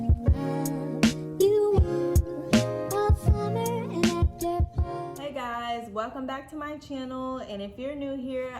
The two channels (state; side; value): identical; both; correlation 1.00